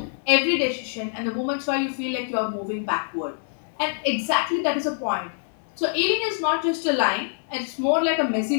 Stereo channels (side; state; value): right; silent; digital silence